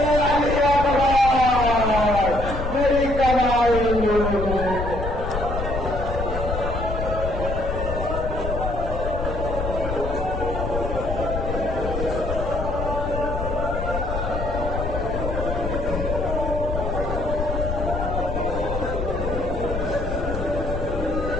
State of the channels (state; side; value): noise; left; rumble, 4 dB below the sound